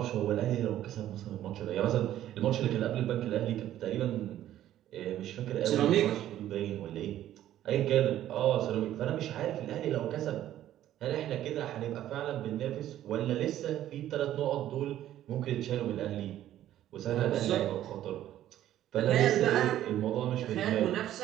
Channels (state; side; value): quieter; left; 12.5 dB